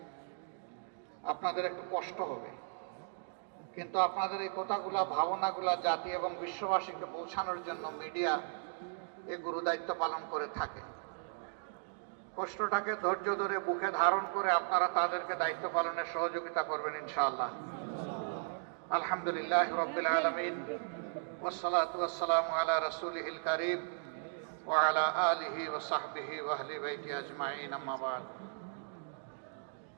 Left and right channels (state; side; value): silent; left; digital silence